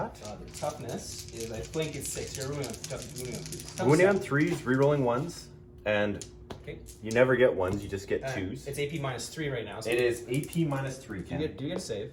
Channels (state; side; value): identical; both; correlation 1.00